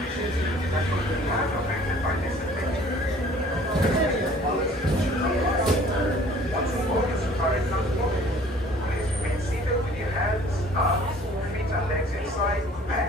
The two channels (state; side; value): normal; both; correlation 0.52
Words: that could be aggravated by this adventure. Once aboard the safari transport, please remain seated with your hands, arms, feet and legs inside, and